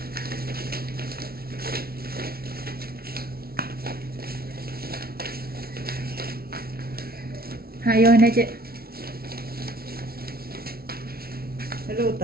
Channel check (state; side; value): late; left; 0.44 ms